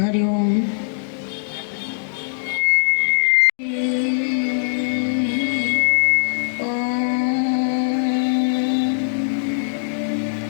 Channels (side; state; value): right; silent; digital silence